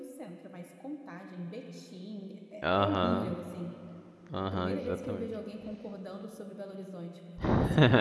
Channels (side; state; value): both; identical; correlation 1.00